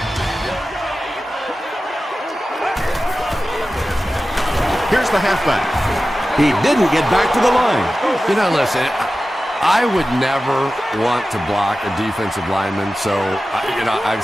Here's the halfback. He didn't get back to the line. You know, listen, I would never want to block a defensive lineman. So, I've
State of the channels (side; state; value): both; normal; correlation 0.94